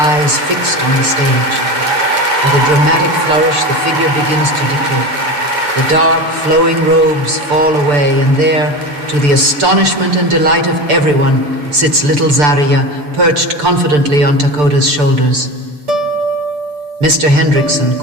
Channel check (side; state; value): left; late; 6.8 ms